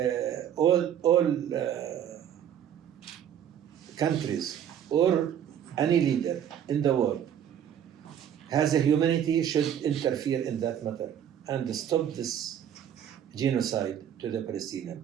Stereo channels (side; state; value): left; quieter; 9.6 dB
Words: all countries or any leader in the world has a humanity should interfere in that matter and stop this genocide to the Palestinian